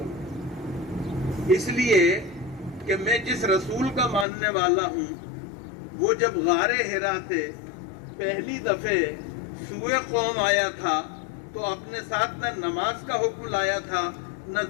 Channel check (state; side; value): drops out; right; at 4.2 s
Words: اس لیے کہ میں جس رسول کا ماننے والا ہوں، وہ جب غار حرا سے پہلی دفعہ سوئے قوم آیا تھا تو اپنے ساتھ نہ نماز کا حکم لایا تھا، نہ